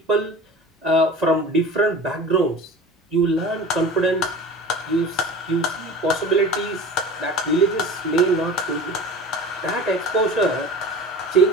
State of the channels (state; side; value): normal; both; correlation 0.37